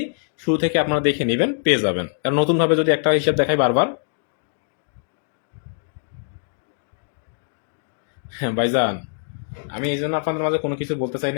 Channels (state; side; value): silent; right; digital silence